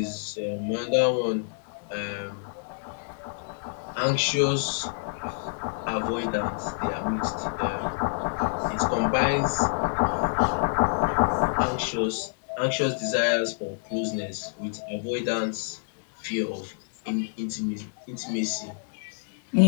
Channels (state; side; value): silent; right; digital silence